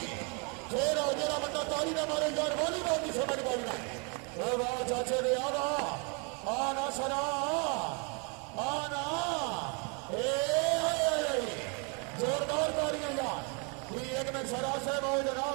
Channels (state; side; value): quieter; left; 35.3 dB